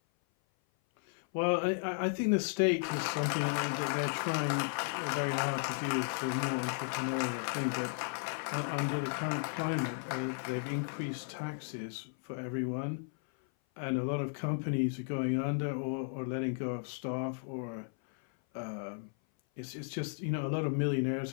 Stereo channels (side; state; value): right; silent; 55 dB below the other